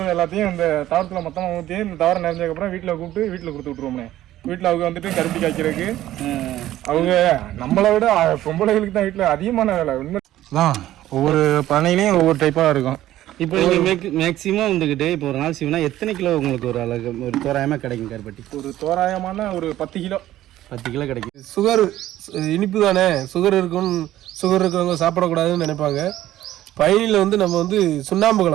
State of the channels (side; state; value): left; quieter; 13.9 dB